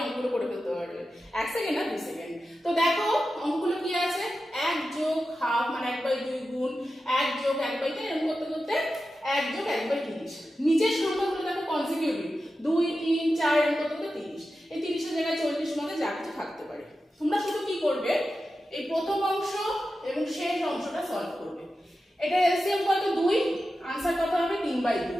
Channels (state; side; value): normal; both; correlation 0.92